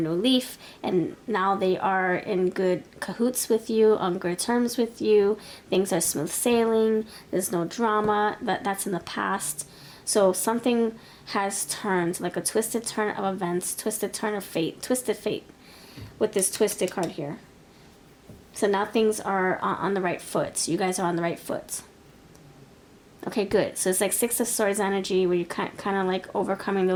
leaf, and now they are in good cahoots with you, on good terms with you. Things are smooth sailing. There's no drama. That's in the past. So something has turned, like a twisted turn of events, twisted turn of fate, twisted fate, with this twisted card here. So now things are on the right foot. You guys are on the right foot. Okay, good. So it's like 6 of Swords energy, where you're kind of like overcoming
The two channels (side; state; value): both; identical; correlation 1.00